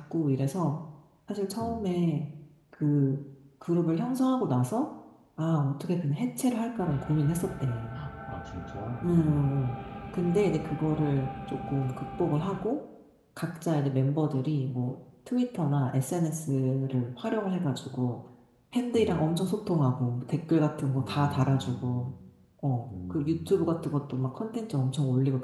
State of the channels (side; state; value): both; identical; correlation 1.00